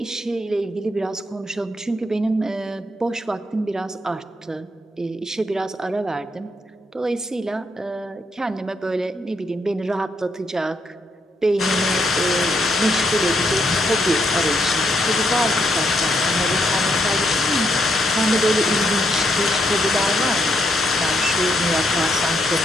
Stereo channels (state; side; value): normal; both; correlation 0.76